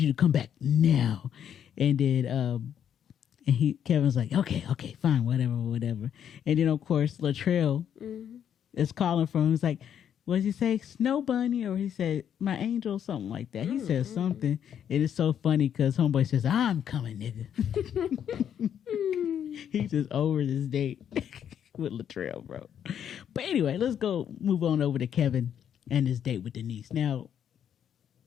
to come back now. And then Kevin's like, okay, fine, whatever. And then of course Latrell is calling for him. He's like, what did he say? Snow bunny? Or he said, my angel, something like that. He says something. It is so funny because homeboy says, I'm coming, nigga. He's just over this date with Latrell, bro. But anyway, let's move on over to Kevin and his date with Denise. Now,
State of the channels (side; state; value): right; quieter; 9.1 dB